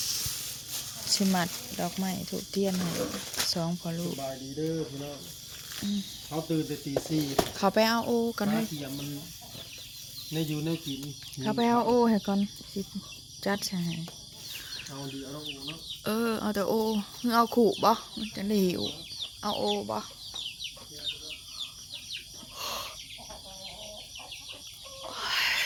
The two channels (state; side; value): identical; both; correlation 1.00